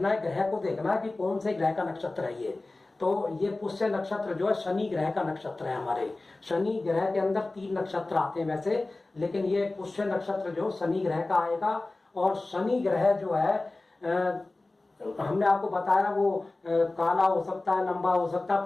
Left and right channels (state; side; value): quieter; right; 3.1 dB